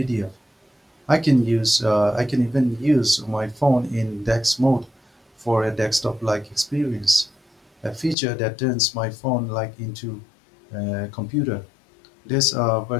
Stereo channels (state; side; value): drops out; right; at 8.2 s